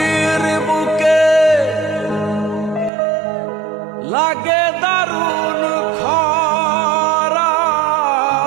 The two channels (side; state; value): left; drops out; at 2.9 s